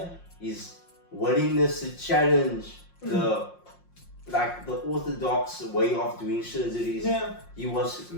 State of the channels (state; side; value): late; right; 5.6 ms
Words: His willingness to challenge the orthodox way of doing surgeries. Yeah. He was